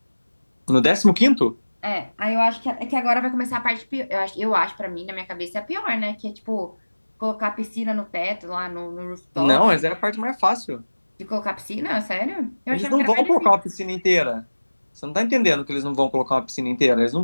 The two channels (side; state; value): both; inverted; correlation -1.00